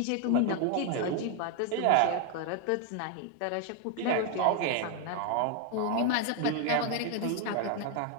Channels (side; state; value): both; different; correlation 0.01